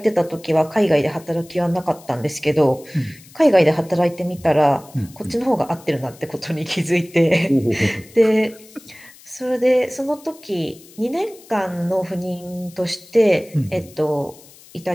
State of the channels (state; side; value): noise; left; hiss, 23 dB below the sound